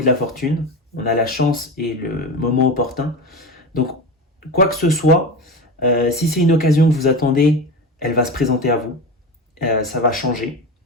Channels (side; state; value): both; normal; correlation 0.25